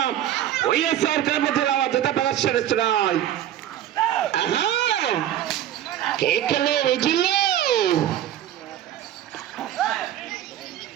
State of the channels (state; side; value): quieter; left; 11.6 dB